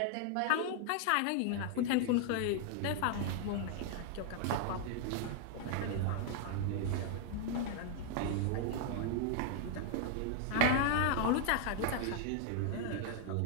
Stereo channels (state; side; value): different; both; correlation 0.00